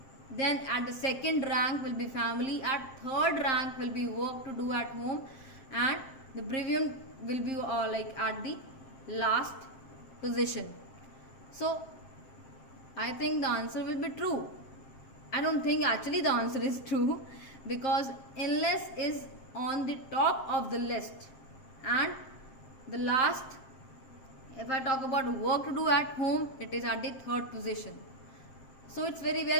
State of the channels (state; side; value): late; right; 7.6 ms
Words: then at the second rank will be family, at third rank will be work to do at home, and the bereavement will be like at the last position. So I think the answer will be true. I don't think actually the answer is true because illness is on the top of the list, and the last, if I talk about work to do at home, it is at the third position. So it's very